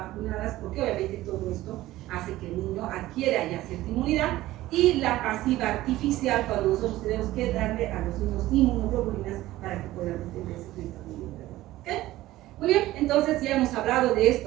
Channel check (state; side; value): quieter; left; 16.2 dB